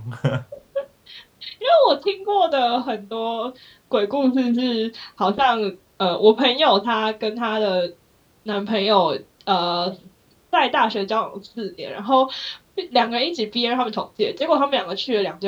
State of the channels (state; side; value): identical; both; correlation 1.00